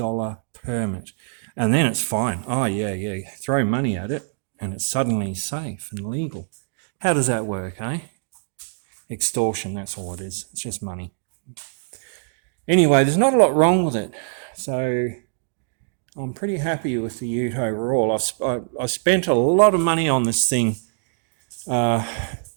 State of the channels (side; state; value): left; silent; digital silence